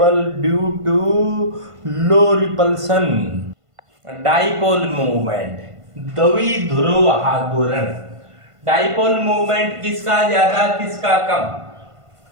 due to low repulsion. Dipole movement, द्विध्रुव आघूर्ण, डाइपोल मूवमेंट किसका ज्यादा किसका कम,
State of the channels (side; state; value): left; late; 1.5 ms